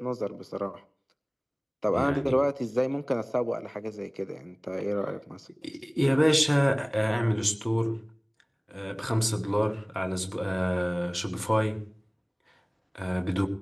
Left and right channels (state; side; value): identical; both; correlation 1.00